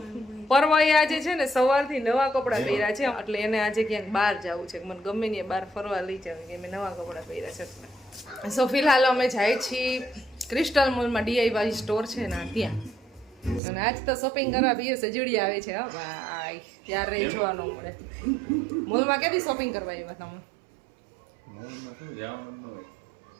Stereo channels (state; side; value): drops out; left; at 13.6 s